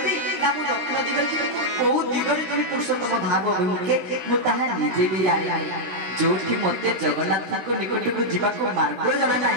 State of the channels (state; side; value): late; left; 16 ms